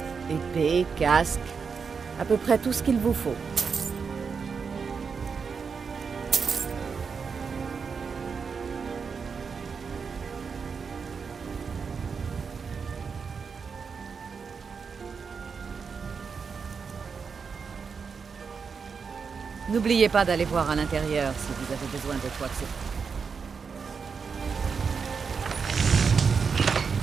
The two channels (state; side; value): quieter; left; 5.7 dB